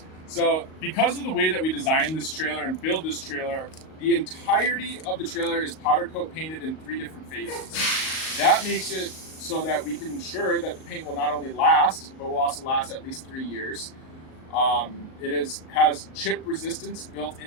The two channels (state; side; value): late; right; 38 ms